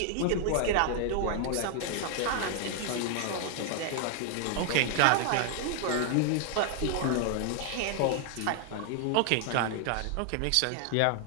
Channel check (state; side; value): different; both; correlation 0.00